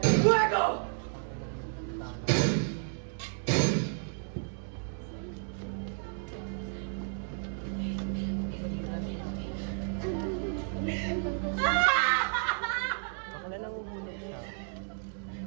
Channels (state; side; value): silent; left; 56 dB below the other